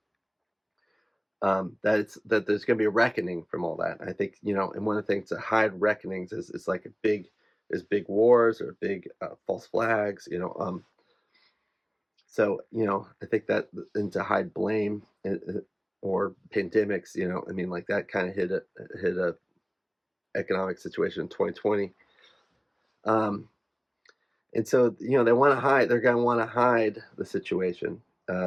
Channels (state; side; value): identical; both; correlation 1.00